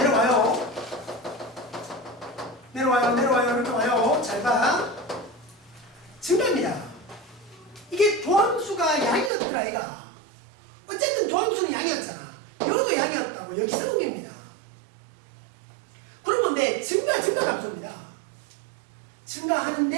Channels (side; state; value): left; drops out; at 9.3 s